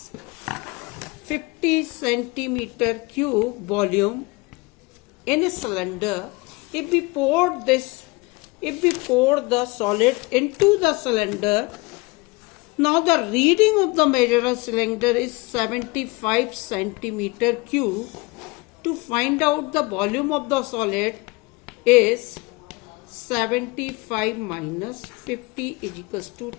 50 centimeter cube volume in a cylinder, if we pour the solid into the cylinder, now the reading of the measurer cylinder is 75 centimeter cube. To find out the volume of the solid is 75 minus 50 is equals to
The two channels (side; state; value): right; quieter; 24.8 dB